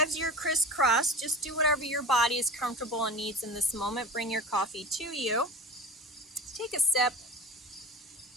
you're crisscrossed, just do whatever your body is comfortable and needs in this moment. Bring your coffee to you. Take a sip.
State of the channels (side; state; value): both; normal; correlation 0.34